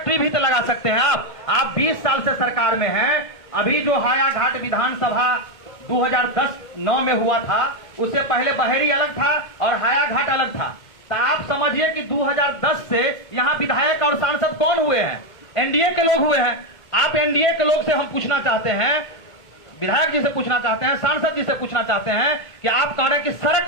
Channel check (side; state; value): right; late; 1.5 ms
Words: भी तो लगा सकते हैं आप 20 साल से सरकार में हैं। अभी जो हायाघाट विधानसभा 2010-9 में हुआ था, उससे पहले बहेरी अलग था और हायाघाट अलग था। तो आप समझिए कि 2010 से यहाँ विधायक और सांसद कौन हुए हैं? एनडीए के लोग हुए हैं। आप एनडीए के लोग से हम पूछना चाहते हैं, विधायक जी से पूछना चाहते हैं, सांसद जी से पूछना चाहते हैं कि आप कह रहे हैं कि